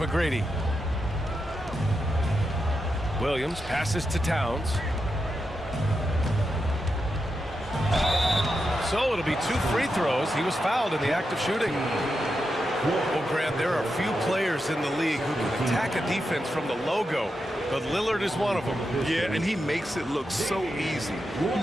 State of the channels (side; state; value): both; normal; correlation 0.87